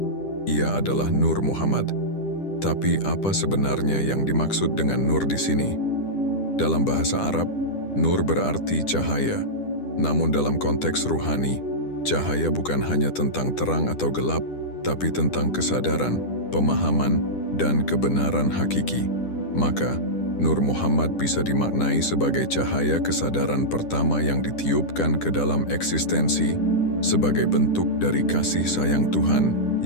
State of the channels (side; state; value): right; late; 10 ms